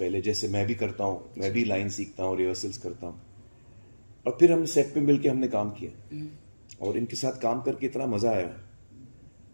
जैसे मैं भी करता हूँ, मैं भी लाइन सीखता हूँ, रिहर्सल्स करता हूँ और फिर हम सेट पे मिलके हमने काम किया और इनके साथ काम करके इतना मजा आया।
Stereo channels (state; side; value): inverted; both; correlation -1.00